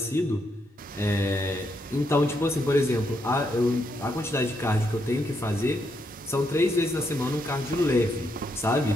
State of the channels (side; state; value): both; normal; correlation 0.78